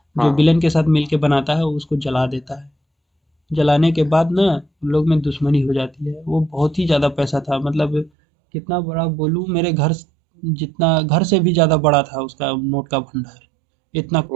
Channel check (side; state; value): left; drops out; at 8.1 s